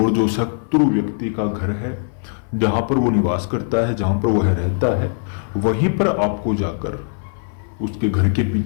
जो शत्रु व्यक्ति का घर है, जहां पर वो निवास करता है, जहां पर वह रहता है, वहीं पर आपको जाकर उसके घर के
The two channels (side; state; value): right; silent; 58 dB below the other